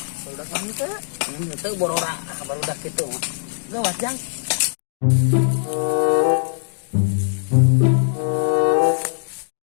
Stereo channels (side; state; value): right; silent; digital silence